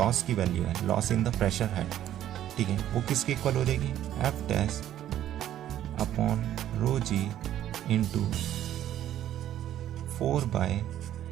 की वैल्यू है, loss in the pressure head, ठीक है, वो किसके इक्वल हो जाएगी, F dash upon rho ji into 4 by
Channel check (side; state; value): left; quieter; 11.8 dB